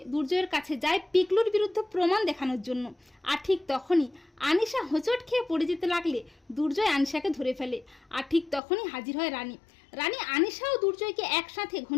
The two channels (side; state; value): right; drops out; at 8.6 s